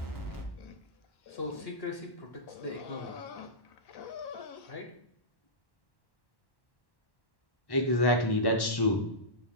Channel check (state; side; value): late; right; 1.1 ms